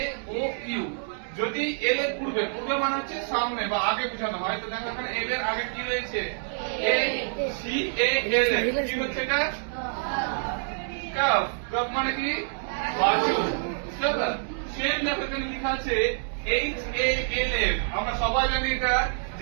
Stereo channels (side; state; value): left; silent; digital silence